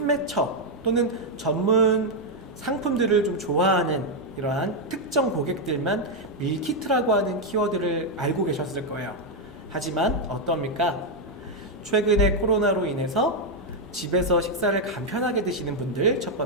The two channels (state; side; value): normal; both; correlation 0.01